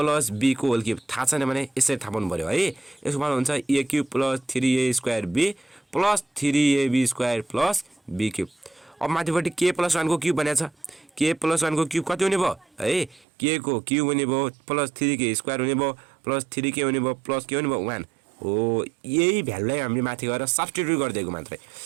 b को होल क्युब थाहा छैन भने यसरी थाहा पाउनु पर्यो है यसको फर्मुला हुन्छ a cube + 3a² b + 3ab² + b cube अब माथिपट्टि k + 1 को क्युब भनेको छ k + 1 को क्युब कति हुने भयो है k को क्युब हुने भयो +3k² हुने भयो +3k हुने भयो +k हुने भयो 1 हो यही भ्यालुलाई हामीले माथि गएर सब्स्टिट्युट गरिदिएको मात्रै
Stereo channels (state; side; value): drops out; left; at 13.2 s